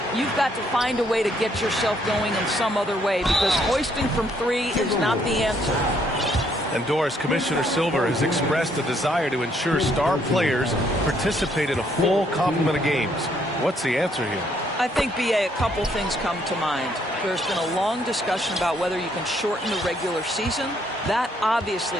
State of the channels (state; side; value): normal; both; correlation 0.69